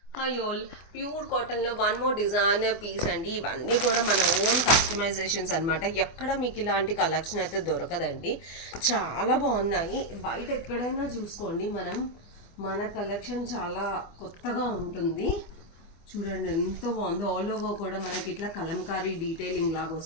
కయోల్ ప్యూర్ కాటన్లో వన్ మోర్ డిజైనర్ పీస్ అండి. ఇవన్నీ కూడా మన ఓన్ కస్టమైజేషన్స్ అనమాట. ఎక్కడ మీకు ఇలాంటి కలెక్షన్ అయితే దొరకదండి. చాలా బాగున్నాయి. బయట ఎక్కడైనా చూసుకోండి, మన కలెక్షన్ చాలా కొత్తగా ఉంటుంది. చూడండి ఎంత బాగుంది. ఆల్ ఓవర్ కూడా మనకి ఇట్లా కలంకారీ డీటెయిలింగ్ లాగా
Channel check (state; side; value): late; right; 24 ms